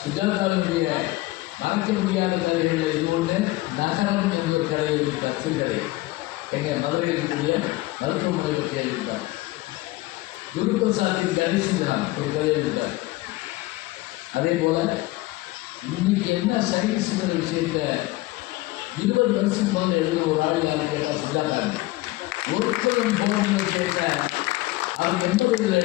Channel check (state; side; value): quieter; right; 19.5 dB